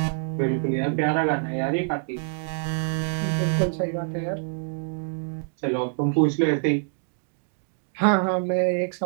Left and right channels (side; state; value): left; silent; digital silence